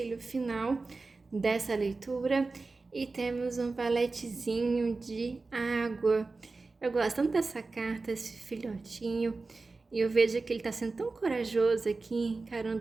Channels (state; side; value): quieter; left; 3.8 dB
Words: final dessa leitura, e temos um valetezinho de água. Eu gosto tanto dessa carta, esse filhotinho, e eu vejo que ele está sendo tão corajoso aqui,